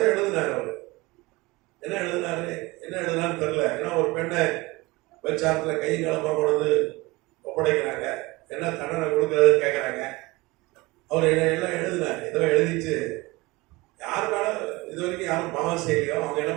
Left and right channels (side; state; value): left; quieter; 22.4 dB